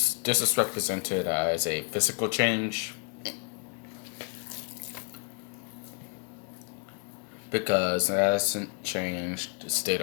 is represented as a physical change because it hasn't changed the state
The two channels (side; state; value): right; quieter; 36.9 dB